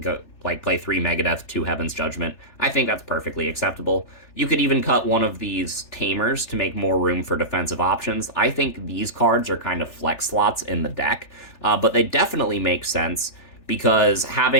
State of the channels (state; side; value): late; right; 3.4 ms